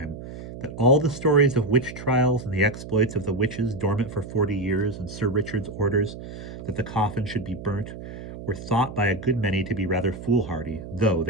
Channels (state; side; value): noise; right; hum, 11 dB below the sound